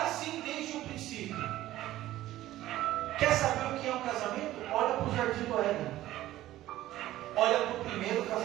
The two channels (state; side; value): quieter; left; 14.8 dB